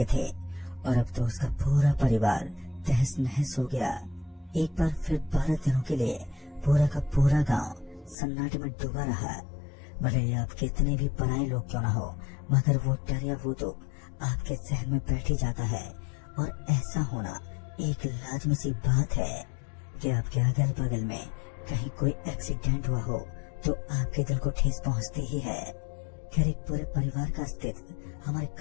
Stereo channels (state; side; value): drops out; right; at 8.2 s